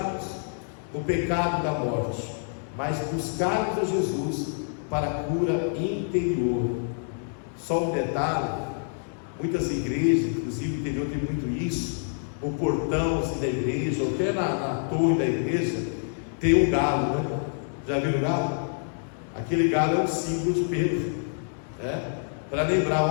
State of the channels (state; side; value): silent; right; digital silence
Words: no pecado da morte, mas buscarmos a Jesus para a cura interior. Só um detalhe: muitas igrejas, inclusive no interior, tem muito isso. O portão assim, da igreja, ou até na torre da igreja, tem um galo, né? Já viram o galo? Aquele galo é um símbolo de Pedro, né? Para